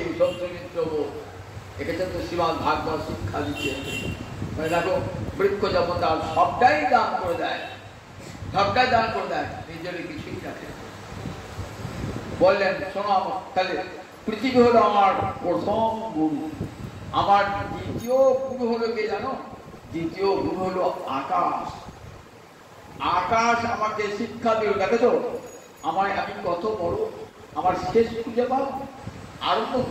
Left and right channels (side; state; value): both; identical; correlation 1.00